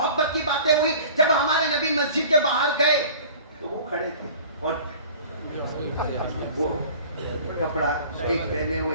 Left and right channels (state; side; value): inverted; both; correlation -0.44